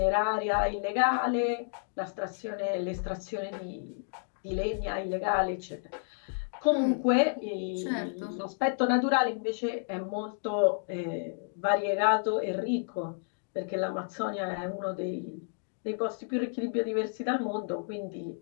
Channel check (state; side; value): silent; right; digital silence